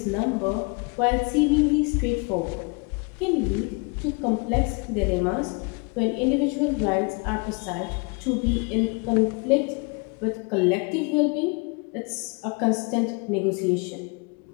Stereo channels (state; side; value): quieter; right; 32.3 dB